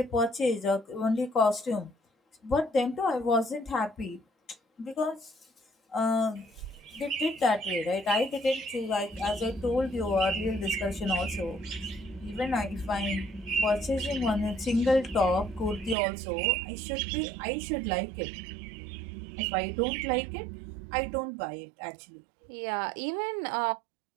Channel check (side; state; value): left; drops out; at 16.0 s